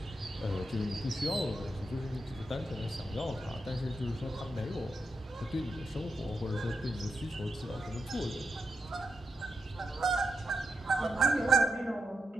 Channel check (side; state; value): both; normal; correlation 0.85